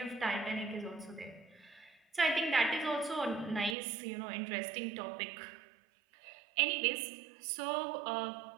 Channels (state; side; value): drops out; left; at 3.8 s